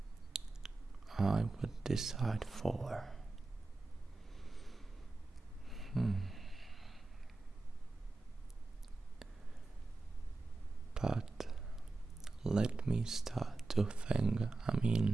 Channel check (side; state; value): left; quieter; 3.4 dB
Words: I would decide for. But let me start to think.